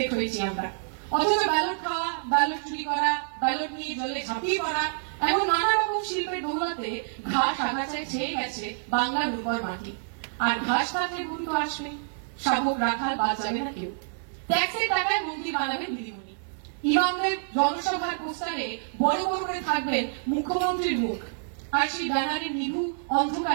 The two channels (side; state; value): left; silent; digital silence